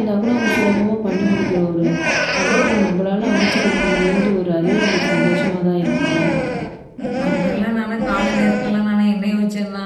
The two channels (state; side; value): identical; both; correlation 1.00